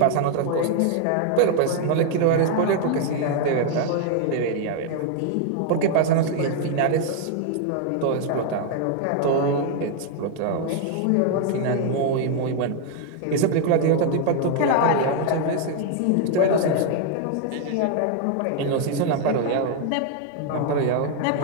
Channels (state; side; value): different; both; correlation 0.00